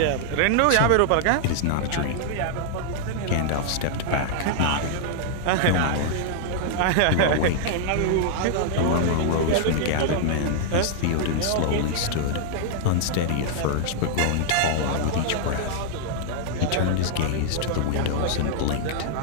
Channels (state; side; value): different; both; correlation 0.00